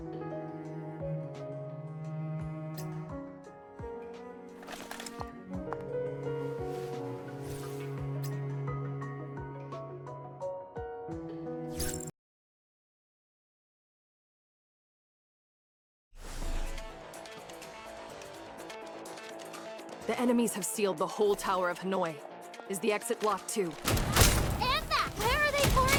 The enemies have sealed the whole Tower of Hanoi. Is the exit blocked too? Anna, where are they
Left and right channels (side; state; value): both; identical; correlation 1.00